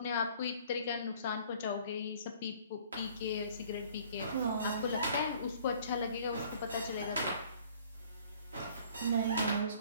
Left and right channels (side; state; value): both; inverted; correlation -0.54